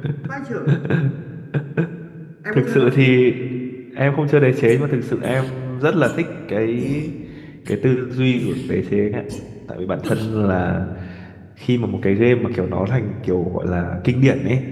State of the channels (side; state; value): both; identical; correlation 1.00